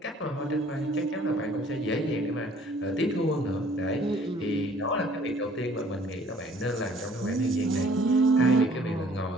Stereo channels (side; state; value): both; normal; correlation 0.56